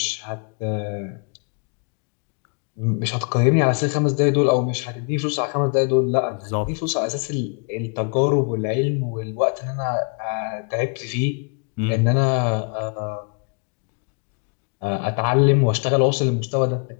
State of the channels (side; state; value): right; quieter; 37.6 dB